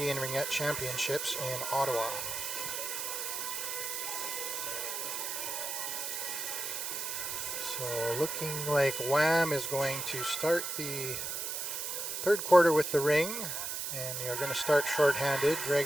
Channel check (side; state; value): right; noise; hiss, 3 dB below the sound